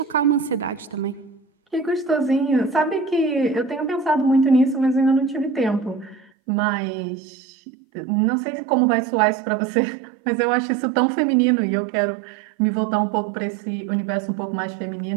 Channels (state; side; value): drops out; left; at 6.3 s